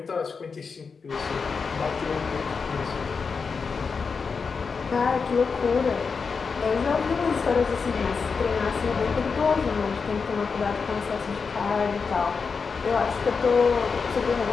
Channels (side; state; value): right; quieter; 5.2 dB